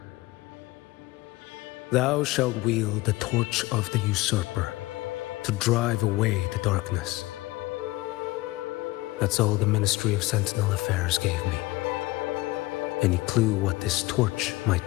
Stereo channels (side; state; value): right; quieter; 19.9 dB